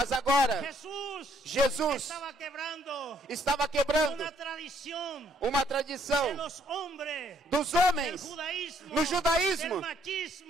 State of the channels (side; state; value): both; normal; correlation 0.67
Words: agora, Jesús Jesus estaba quebrando estava quebrando una tradición uma de tradição los hombres dos del homens judaísmo, no judaísmo,